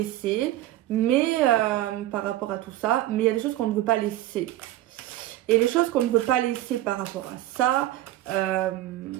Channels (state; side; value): quieter; left; 14.7 dB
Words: Mais, par rapport à tout ça, mais il y a des choses qu'on ne veut pas laisser. Et les choses qu'on ne veut pas laisser par rapport à ça,